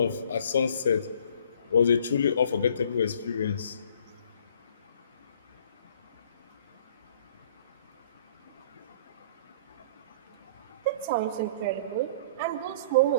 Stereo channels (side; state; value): both; inverted; correlation -0.54